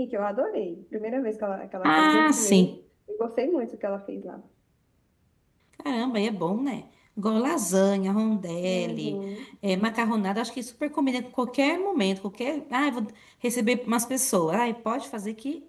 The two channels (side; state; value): both; identical; correlation 1.00